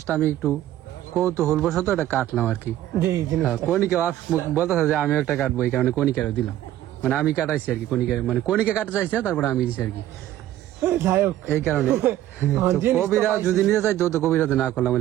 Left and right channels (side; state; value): left; quieter; 13.3 dB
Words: আমি একটু কৌতূহল বশত এটা কাটলাম আর কি। কণিকা বলতেছে যে আমি একটা কাটবো, এই কারণে কণিকারও দিলাম। মানে আমি কাটাইছি আর কি, কণিকা কাটা চাইছে, তারপরে আমি দিছি আর কি, এই কারণে। কবিরা যদি নিতে চাই তো কবিরাতে না করলাম,